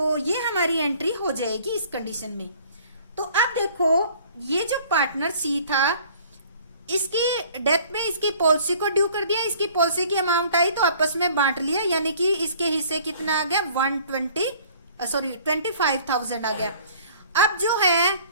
ये हमारी एंट्री हो जाएगी इस कंडीशन में। तो अब देखो ये जो पार्टनर सी था इसकी डेथ में इसकी पॉलिसी को ड्यू कर दिया, इसकी पॉलिसी की अमाउंट आई तो आपस में बांट लिया, यानी कि इसके हिस्से कितना आ गया, 25,000 आ गया। अब जो है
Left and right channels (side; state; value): both; inverted; correlation -0.53